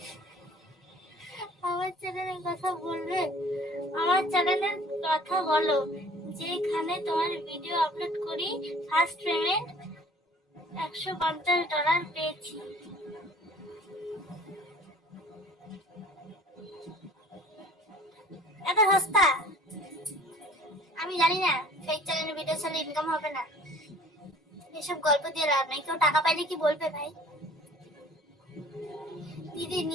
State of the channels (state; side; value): normal; both; correlation 0.51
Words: আমার চ্যানেলের কথা বলবে? আমার চ্যানেলের কথা বলো, যেখানে তোমার ভিডিও আপলোড করি ফার্স্ট পেমেন্ট $150 পেয়েছি। এত সস্তা? আমি জানি না ফেক চ্যানেলে ভিডিও ছাড়লে ইনকাম হবে না, এসব গল্প দিয়ে লাভ নেই। কেউ টাকা পাইলে কি বলবে ভাই? দিদি